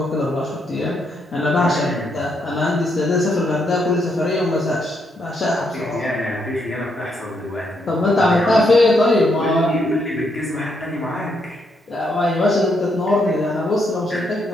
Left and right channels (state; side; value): normal; both; correlation 0.77